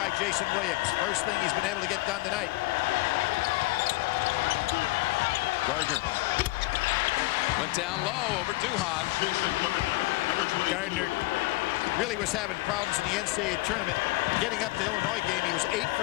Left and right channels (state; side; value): quieter; right; 20.7 dB